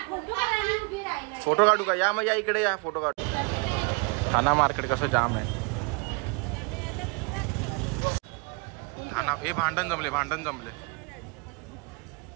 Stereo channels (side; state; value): left; quieter; 31.1 dB